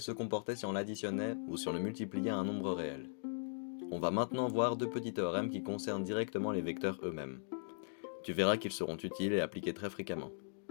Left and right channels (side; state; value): right; silent; digital silence